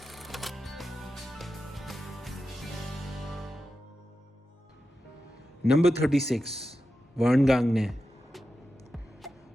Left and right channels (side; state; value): both; normal; correlation 0.91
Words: Number 36, Vern Gagne.